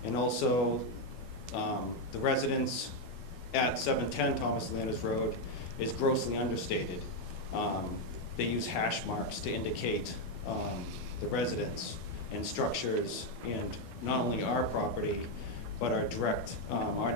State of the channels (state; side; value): late; right; 12 ms